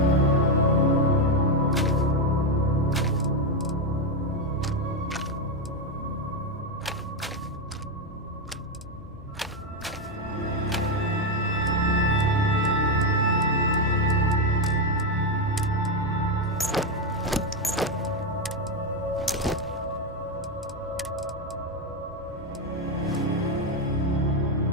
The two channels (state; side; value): normal; both; correlation 0.07